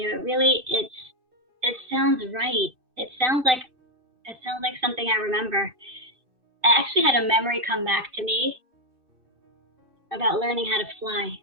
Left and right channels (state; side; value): late; left; 2.6 ms